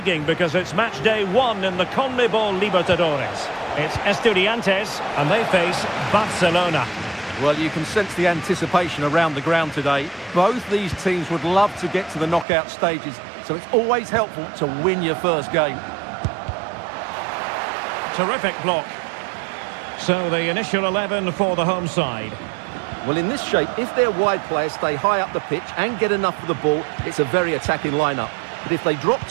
because it's match day 1 in the CONMEBOL Libertadores. It's Estudiantes, and they face Barcelona. Well, you can sense the anticipation around the ground today. Both these teams would love to get to the knockout stages, so it's always helpful to win your first game. Terrific block. So the initial 11 for the home side. Well, in this shape, if their wide players stay high up the pitch and get enough of the ball, it's a very attacking lineup. But if they drop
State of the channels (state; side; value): drops out; left; at 12.5 s